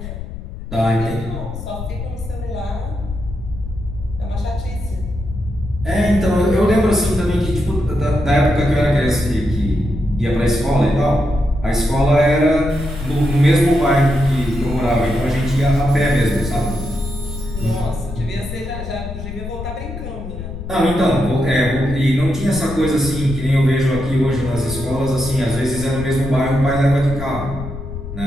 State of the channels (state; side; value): noise; left; rumble, 9 dB below the sound